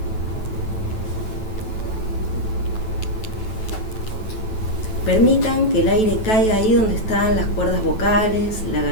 Permitan que el aire caiga ahí donde están las cuerdas vocales, la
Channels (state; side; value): late; right; 9.1 ms